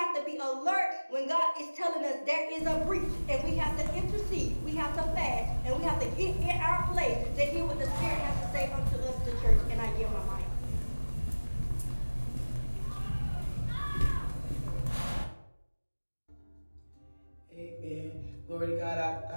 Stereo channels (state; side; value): inverted; both; correlation -1.00